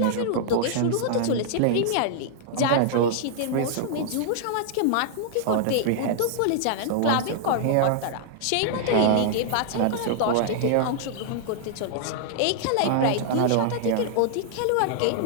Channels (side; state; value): both; different; correlation -0.01